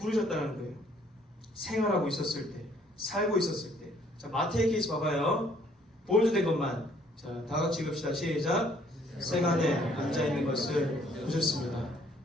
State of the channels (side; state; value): both; normal; correlation 0.63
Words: 거예요. 생활하고 있었을 때, 살고 있었을 때. 자, 마태의 케이스 봐봐요. 볼드된 것만. 자, 다 같이 읽읍시다. 시작. 세간에 앉아있는 것을 보셨습니다.